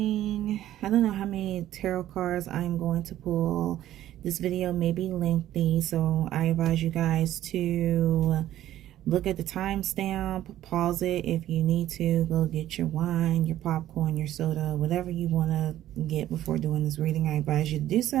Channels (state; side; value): quieter; left; 13.0 dB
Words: I don't know how many tarot cards I'm going to pull. This video may be lengthy, so I advise you guys to look at the timestamp, pause it if you need to, go get your wine, your popcorn, your soda, whatever you want to get before doing this reading. I advise you to do